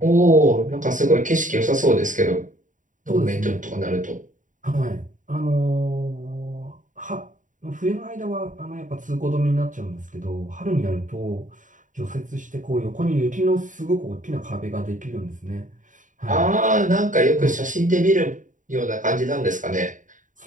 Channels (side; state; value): left; late; 0.37 ms